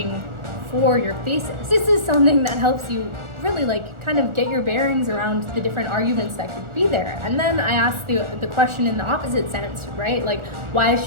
for your thesis. This is something that helps you really kind of get your bearings around the different arguments that could be there. And then I asked the question in the opposite sense, right? Like, why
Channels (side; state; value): left; late; 1.4 ms